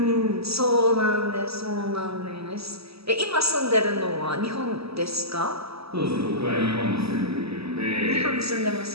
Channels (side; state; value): left; late; 0.78 ms